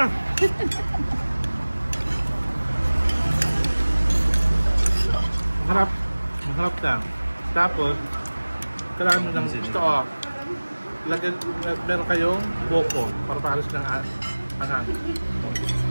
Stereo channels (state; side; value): inverted; both; correlation -1.00